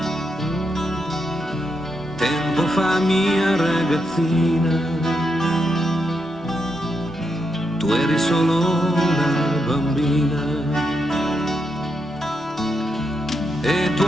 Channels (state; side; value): normal; both; correlation 0.82